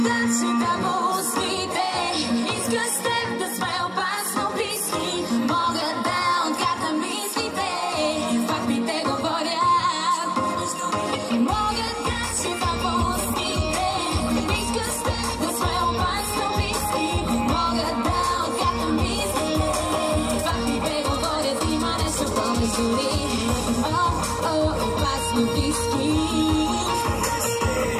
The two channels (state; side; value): identical; both; correlation 1.00